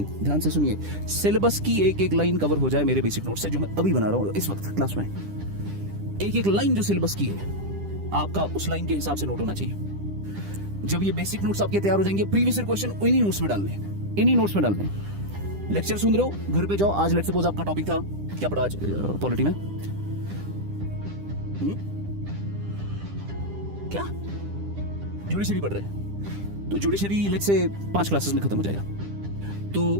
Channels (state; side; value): late; left; 10 ms